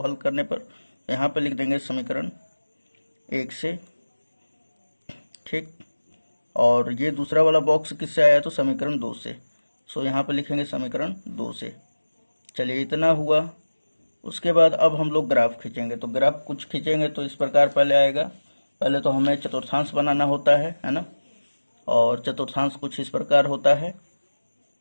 हल करने पर यहाँ पे लिख देंगे समीकरण 1 से। ठीक, और ये दूसरा वाला बॉक्स किससे आया, तो समीकरण 2 से। सो यहाँ पे लिखेंगे समीकरण 2 से। चलिए इतना हुआ। उसके बाद अब हम लोग ग्राफ खींचेंगे। तो ग्राफ कुछ खींचेंगे तो इस प्रकार पहले आएगा। पहले तो हमें चतुर्थांश बनाना होता है ना। और चतुर्थांश कुछ इस प्रकार होता है,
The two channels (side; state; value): both; inverted; correlation -1.00